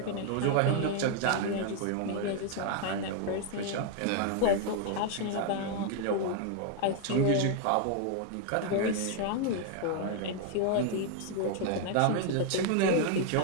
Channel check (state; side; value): different; both; correlation 0.00